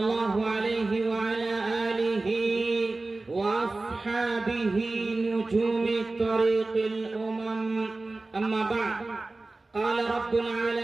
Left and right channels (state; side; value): quieter; left; 3.2 dB